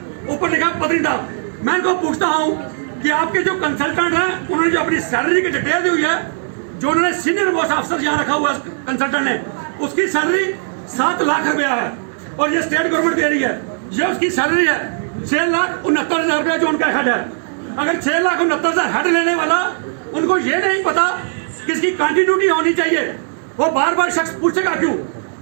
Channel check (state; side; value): silent; left; 62 dB below the other